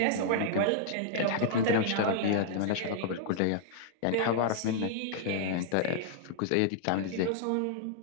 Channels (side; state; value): both; different; correlation -0.01